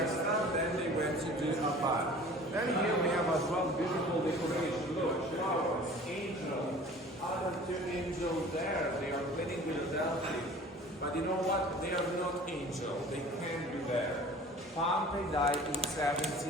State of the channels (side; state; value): both; normal; correlation 0.45